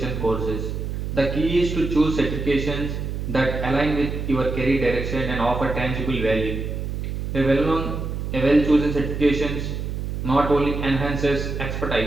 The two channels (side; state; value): right; noise; hum, 4 dB below the sound